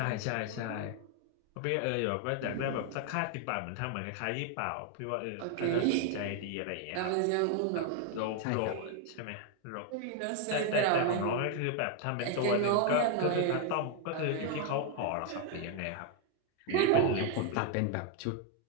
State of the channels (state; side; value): different; both; correlation 0.00